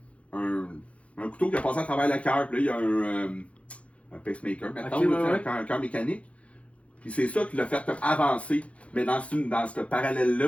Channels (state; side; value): late; right; 0.063 ms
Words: un couteau qui a passé à travers le cœur, puis là, il y a un pacemaker, maintenant, Ok, ouais. un cœur mécanique. Puis c'est ça qui l'a fait comme avancer. Mais dans ce